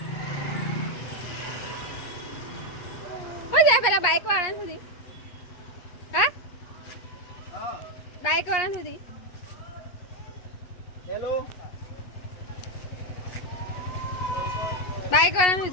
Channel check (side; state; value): right; late; 8.3 ms